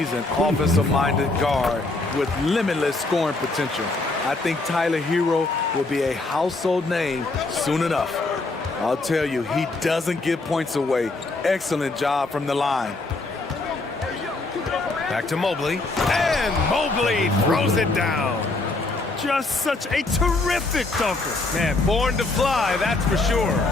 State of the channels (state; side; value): quieter; right; 3.2 dB